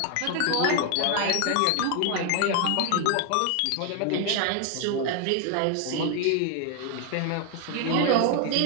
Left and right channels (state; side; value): different; both; correlation 0.00